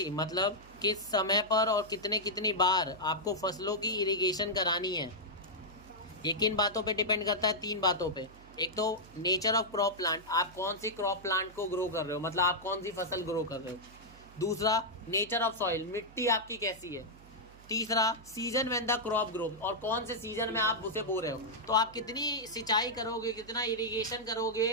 मतलब किस समय पर और कितनी बार आपको फसलों की इरिगेशन करानी है। ये किन बातों पे डिपेंड करता है? 3 बातों पे। एक तो नेचर ऑफ क्रॉप प्लांट, आप कौन सी क्रॉप प्लांट को ग्रो कर रहे हो, मतलब आप कौन सी फसल ग्रो कर रहे हो। दूसरा, नेचर ऑफ सॉइल, मिट्टी आपकी कैसी है। तीसरा, season when the crop grow, और कौन से सीजन में आप उसे बो रहे हो। तो आप कितनी सिंचाई करोगे, कितना इरिगेशन करोगे,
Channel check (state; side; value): noise; right; hum, 22 dB below the sound